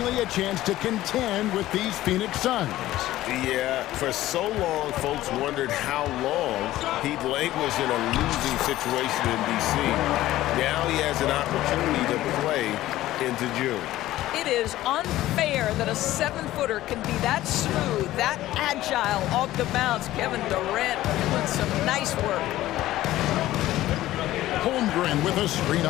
a chance to contend with these Phoenix Suns. Yeah, for so long, folks wondered how long he'd languished in a losing situation in D.C. Now he has an opportunity to play into June. It is unfair that a 7-footer can be that smooth, that agile off the bounce. Kevin Durant doing some nice work. Holmgren with a screen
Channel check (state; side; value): quieter; right; 15.2 dB